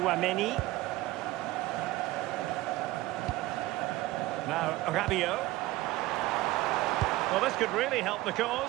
Now Rabiot. Well, this could really help the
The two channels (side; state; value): left; quieter; 17.9 dB